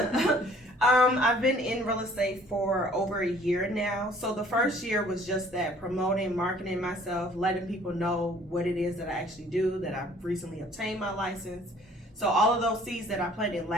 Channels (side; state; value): both; normal; correlation 0.55